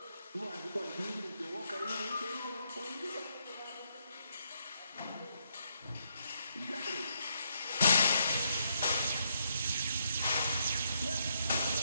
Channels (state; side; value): inverted; both; correlation -0.76